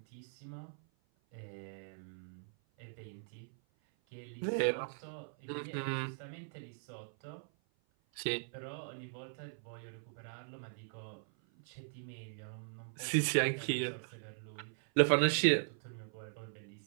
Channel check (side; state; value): left; silent; 52 dB below the other